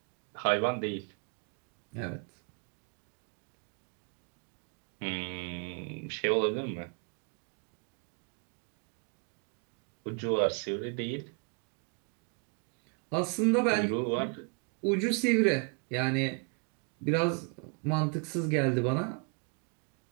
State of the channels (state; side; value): quieter; left; 36.0 dB